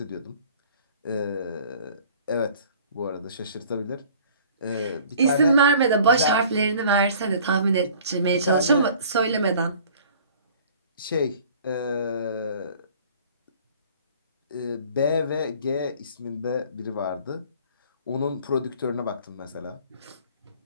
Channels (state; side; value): inverted; both; correlation -0.50